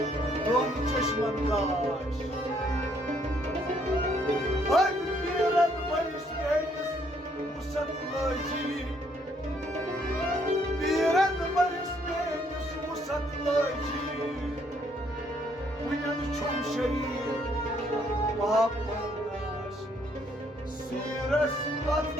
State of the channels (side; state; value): both; normal; correlation 0.68